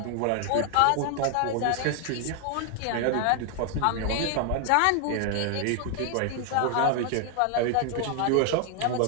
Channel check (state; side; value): different; both; correlation 0.00